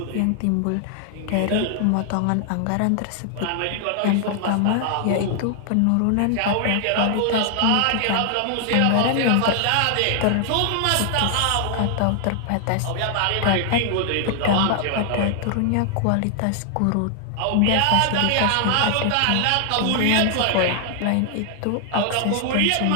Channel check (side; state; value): both; different; correlation 0.00